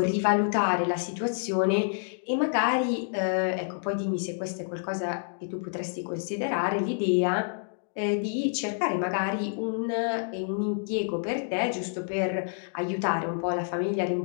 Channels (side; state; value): right; silent; digital silence